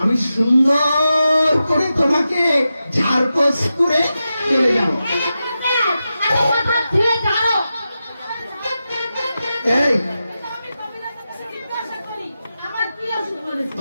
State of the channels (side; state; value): both; inverted; correlation -0.91